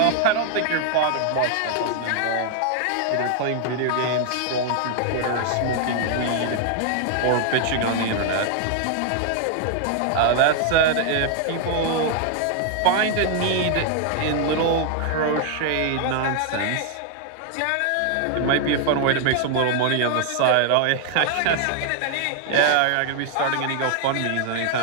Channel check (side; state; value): both; different; correlation 0.00